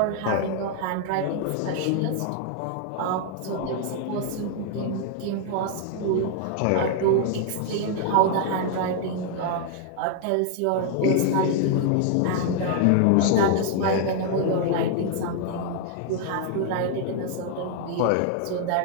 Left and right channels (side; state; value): both; different; correlation 0.00